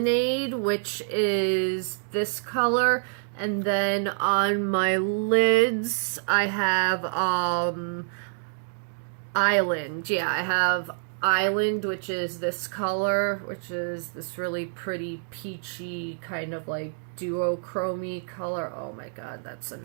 which is this color, and then on my lids, I have Island. Yeah, I have Island, which is this color, which is this really pretty peachy kind of like duochrome color. Oh my god, that's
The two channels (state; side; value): silent; left; digital silence